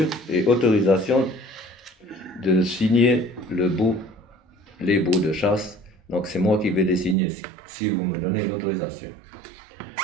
et autorisation de signer les baux de chasse. Donc c'est moi qui vais les signer si vous me donnez l'autorisation.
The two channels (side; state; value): left; drops out; at 7.2 s